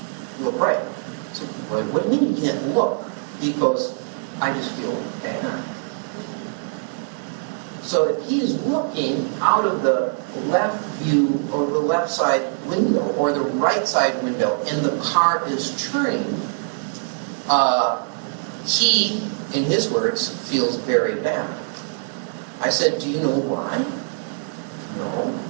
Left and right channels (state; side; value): silent; left; digital silence